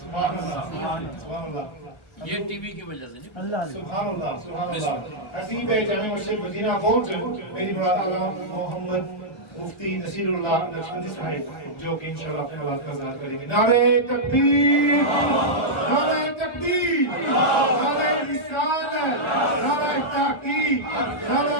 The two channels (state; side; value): late; right; 1.5 ms